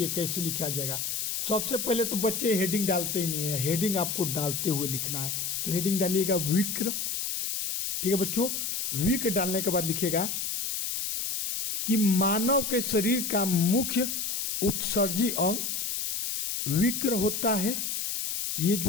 कैसे लिखा जाएगा। सबसे पहले तो बच्चे हेडिंग डालते ही नहीं है, हेडिंग आपको डालते हुए लिखना है। तो हेडिंग डालिएगा विक्र। ठीक है बच्चों, विक्र डालने के बाद लिखिएगा कि मानव के शरीर का मुख्य उत्सर्जी अंग विक्र होता है। ये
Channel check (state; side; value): noise; left; hiss, 1 dB below the sound